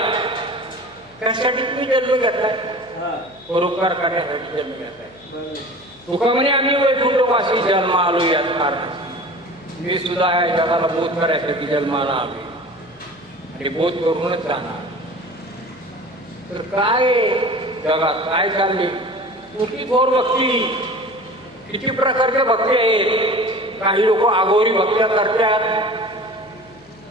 त्यासाठी तुम्ही जन्म घेताय, परोपकार करण्यासाठी जन्म घेताय. तुका म्हणे आम्ही वैकुंठवासी जन्म आलो याच कारणासाठी. मी सुद्धा या जगाला बोध करायसाठी जन्माला आलो आणि बोध करूनच जाणार. तर काय जगात काय चालले? कुठली थोर भक्ती? किती प्रकारच्या भक्ती आहेत? काही लोक आगोरी भक्त्या करतात.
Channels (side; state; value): left; noise; hum, 28 dB below the sound